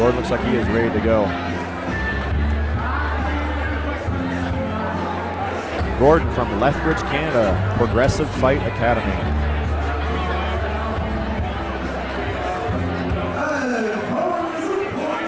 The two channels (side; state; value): both; identical; correlation 1.00